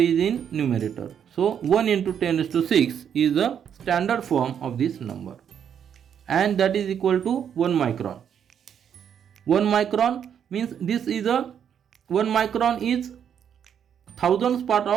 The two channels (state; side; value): quieter; left; 8.4 dB